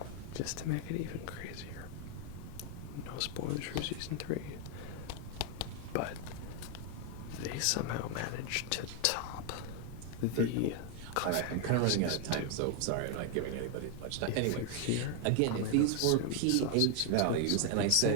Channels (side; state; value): both; different; correlation 0.01